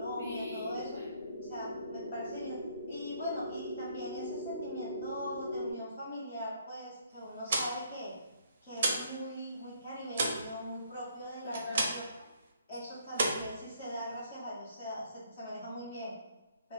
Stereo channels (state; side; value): inverted; both; correlation -0.65